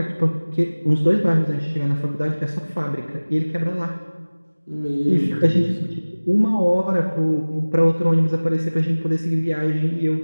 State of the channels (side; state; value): both; inverted; correlation -1.00